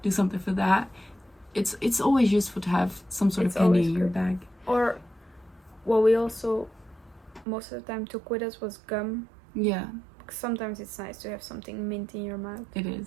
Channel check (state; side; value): drops out; left; at 7.5 s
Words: do something for that. It's always useful to have some sort It's of candy always in your good. bag. Or what we also most of the time took with us was gum. Yeah, Because sometimes it's nice to have something mint in your mouth. it